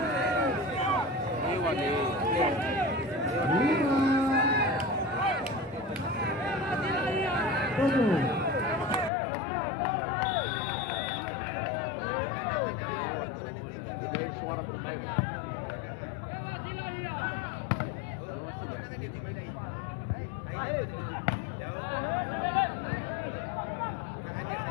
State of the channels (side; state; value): right; drops out; at 9.1 s